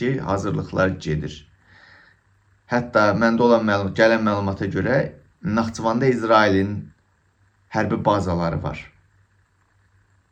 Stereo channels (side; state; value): both; identical; correlation 1.00